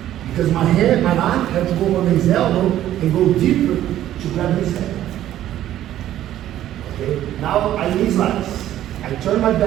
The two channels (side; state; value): left; quieter; 12.6 dB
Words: because my hand, my arm has to go on his elbow and go deeper to grab his head. Okay? Now I knee slice. I turn my